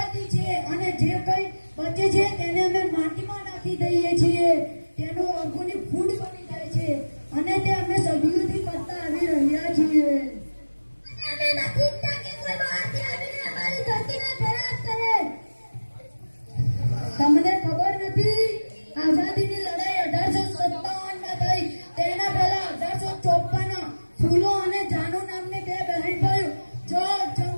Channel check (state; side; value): inverted; both; correlation -1.00